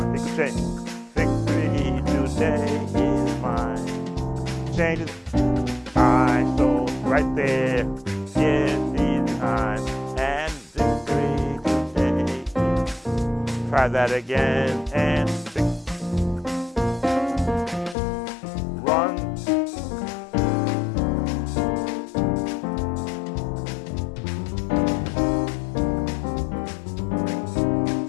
Take a change. Victory today is mine. Change it. So right there, yes, these time, and victory today. Try that again, and run.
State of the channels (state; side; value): drops out; right; at 17.9 s